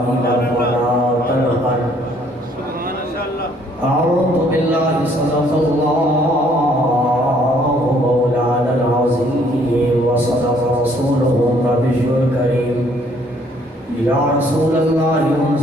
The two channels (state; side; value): normal; both; correlation 0.63